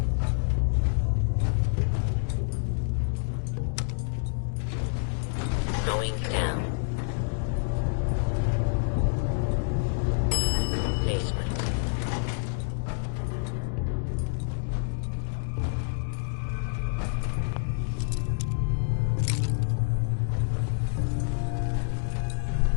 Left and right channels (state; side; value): silent; right; 59 dB below the other